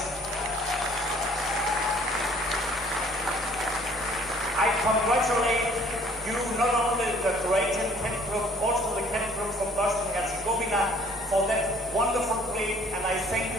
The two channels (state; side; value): normal; both; correlation 0.56